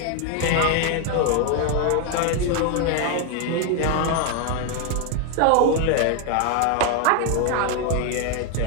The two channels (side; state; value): both; different; correlation 0.01